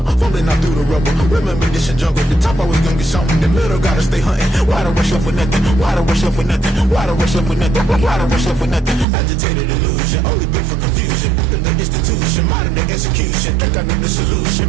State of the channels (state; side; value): drops out; left; at 9.1 s